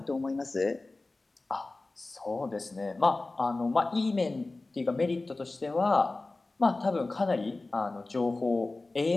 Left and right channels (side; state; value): right; quieter; 3.2 dB